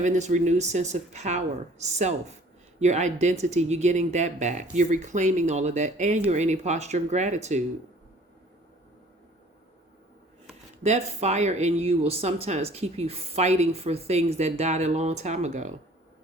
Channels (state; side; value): normal; both; correlation 0.52